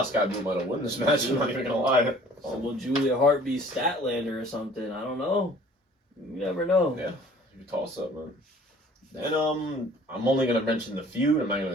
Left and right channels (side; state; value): both; normal; correlation 0.52